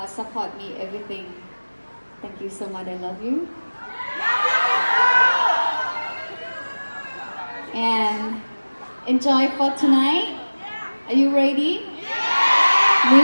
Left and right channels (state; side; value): inverted; both; correlation -1.00